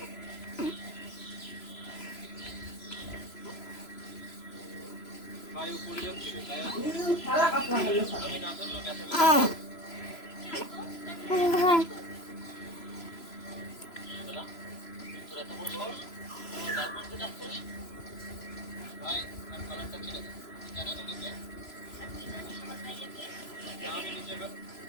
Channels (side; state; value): right; late; 3.0 ms